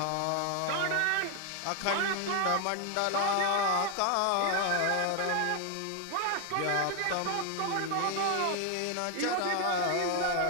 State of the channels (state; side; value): different; both; correlation 0.01